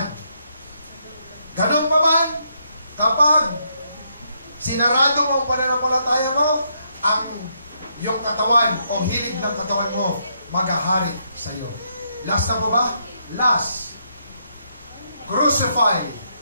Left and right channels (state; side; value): inverted; both; correlation -0.76